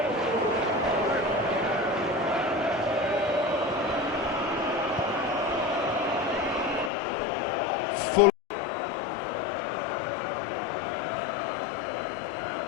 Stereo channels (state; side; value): drops out; right; at 6.9 s